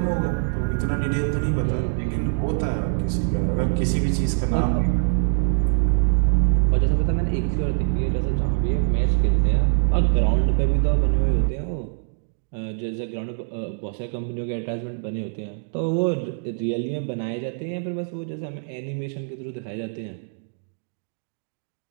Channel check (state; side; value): silent; left; digital silence